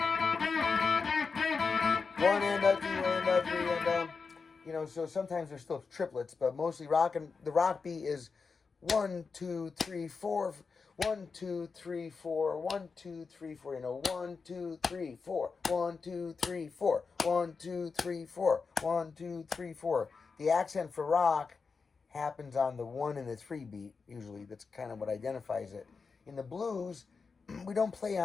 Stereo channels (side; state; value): right; quieter; 4.9 dB